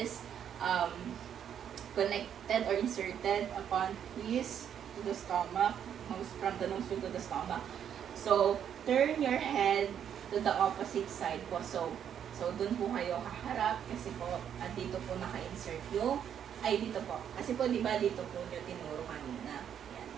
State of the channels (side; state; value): left; quieter; 8.9 dB